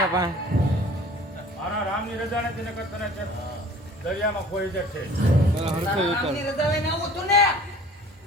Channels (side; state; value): both; normal; correlation 0.47